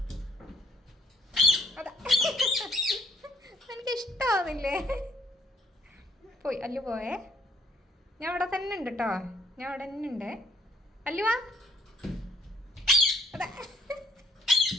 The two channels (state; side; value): normal; both; correlation 0.65